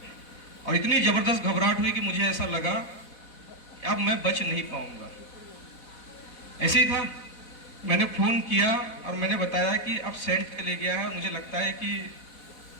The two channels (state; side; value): late; right; 4.0 ms